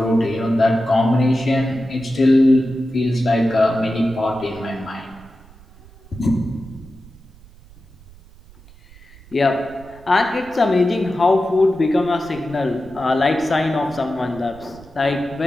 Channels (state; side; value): noise; right; rumble, 23 dB below the sound